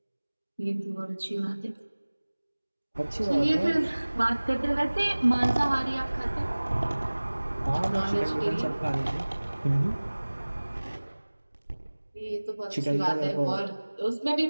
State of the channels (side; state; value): both; inverted; correlation -1.00